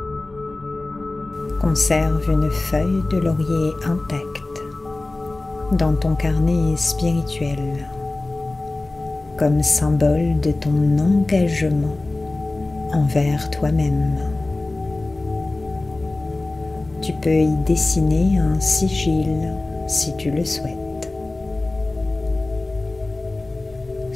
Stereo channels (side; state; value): right; quieter; 3.0 dB